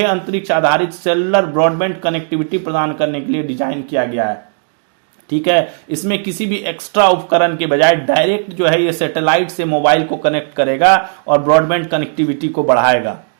अंतरिक्ष आधारित सेलुलर ब्रॉडबैंड कनेक्टिविटी प्रदान करने के लिए डिजाइन किया गया है। ठीक है, इसमें किसी भी एक्स्ट्रा उपकरण के बजाय डायरेक्ट जो है ये सैटेलाइट से मोबाइल को कनेक्ट करेगा और ब्रॉडबैंड कनेक्टिविटी को बढ़ाएगा।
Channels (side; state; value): left; silent; digital silence